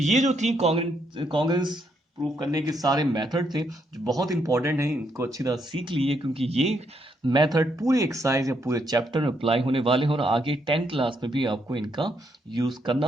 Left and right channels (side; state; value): both; normal; correlation 0.76